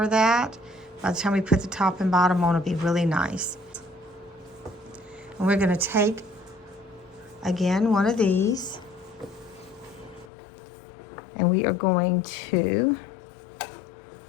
that? By the time we put the top and bottom on, it'll be really nice. And we're going to take, again, one of these, and we are going to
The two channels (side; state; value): right; drops out; at 10.3 s